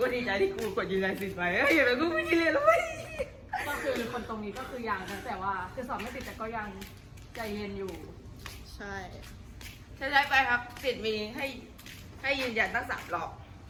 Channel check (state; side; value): identical; both; correlation 1.00